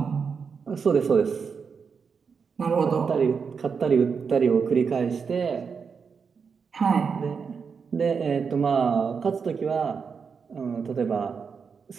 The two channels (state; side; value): quieter; left; 5.8 dB